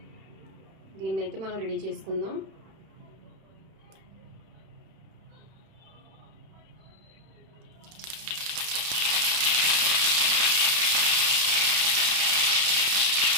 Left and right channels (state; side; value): late; left; 31 ms